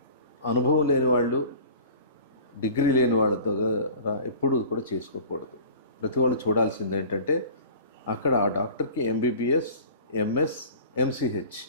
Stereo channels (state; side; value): inverted; both; correlation -0.42